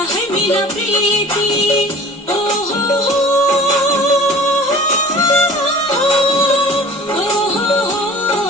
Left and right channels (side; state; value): both; normal; correlation 0.45